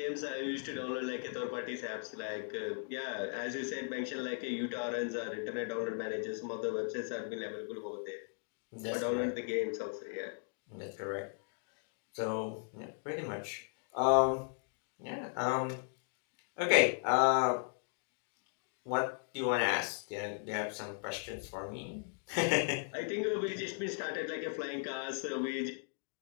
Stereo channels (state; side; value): silent; right; 53 dB below the other